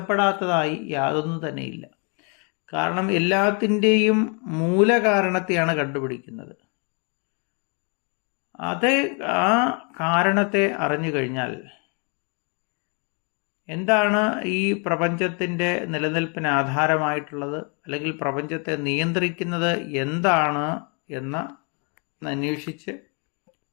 യാതൊന്നും തന്നെയില്ല. കാരണം എല്ലാത്തിൻ്റെയും മൂലകാരണത്തെയാണ് കണ്ടുപിടിക്കുന്നത്. ആ കാരണത്തെ അറിഞ്ഞു കഴിഞ്ഞാൽ എന്താണ് ഈ പ്രപഞ്ചത്തിൻ്റെ നിലനിൽപ്പിന് ആധാരമായിട്ടുള്ളത്, അല്ലെങ്കിൽ പ്രപഞ്ചത്തെ നിയന്ത്രിക്കുന്നത് എന്താണ് എന്ന് അന്വേഷിച്ച്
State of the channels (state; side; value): quieter; right; 36.1 dB